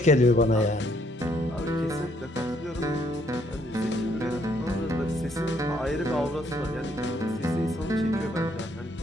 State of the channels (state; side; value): normal; both; correlation 0.69